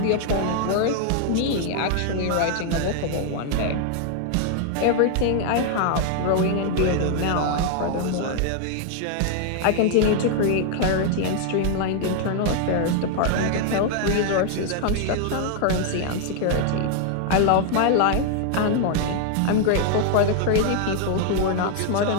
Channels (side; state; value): both; different; correlation 0.00